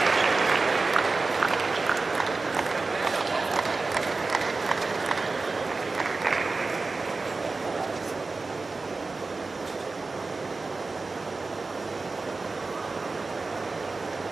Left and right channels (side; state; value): left; quieter; 3.8 dB